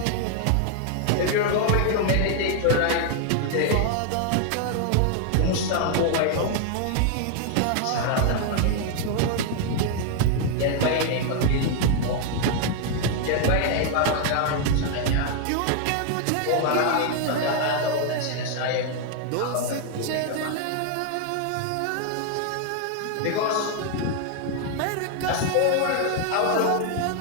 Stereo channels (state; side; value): different; both; correlation 0.00